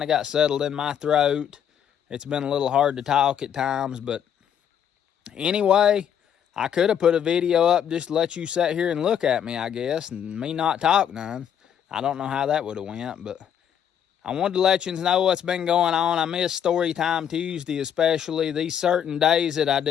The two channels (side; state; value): right; quieter; 9.0 dB